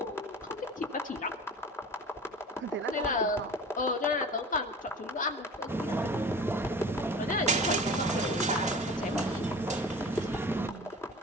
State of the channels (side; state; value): both; normal; correlation 0.38